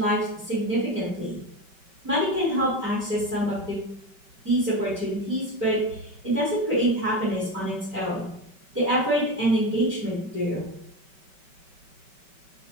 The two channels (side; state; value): left; late; 5.2 ms